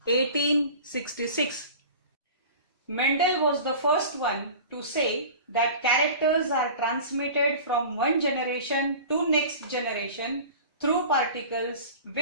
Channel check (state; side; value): inverted; both; correlation -0.38